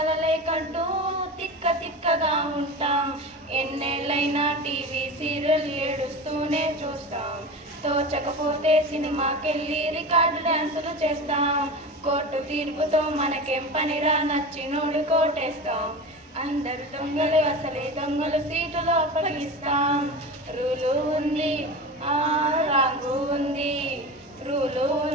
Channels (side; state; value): both; normal; correlation 0.29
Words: కంటూ తిక్కగా ఉంటాం. ఎన్నేళ్ళైనా టీవీ సీరియల్ ఏడుస్తూనే చూస్తాం. తోచకపోతే సినిమాకెళ్ళి రికార్డు డాన్సులు చేస్తాం. కోర్టు తీర్పుతో మనకేం పనిరా, నచ్చినోడు కోటేస్తాం. అందరు దొంగలు అసలే దొంగలు, సీటులో అప్పగిస్తాం. రూలు ఉంది రాంగు ఉంది, రూలు